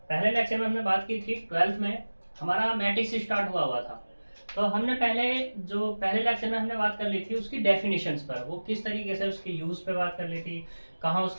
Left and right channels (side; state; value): both; inverted; correlation -1.00